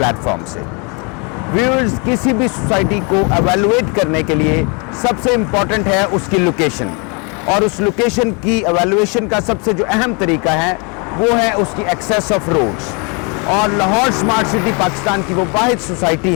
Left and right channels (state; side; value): quieter; right; 33.0 dB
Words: से। व्यूअर्स, किसी भी सोसाइटी को एवेलुएट करने के लिए सबसे इम्पॉर्टेंट है उसकी लोकेशन, और उस लोकेशन की एवेलुएशन का सबसे जो अहम तरीका है वो है उसकी एक्सेस ऑफ रोड्स। और लाहौर स्मार्ट सिटी पाकिस्तान की वो वाहिद सोसाइटी